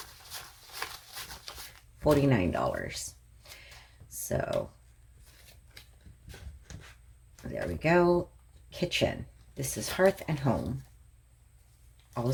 $49. So there we go. Kitchen. This is Hearth and Home.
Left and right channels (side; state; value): both; identical; correlation 1.00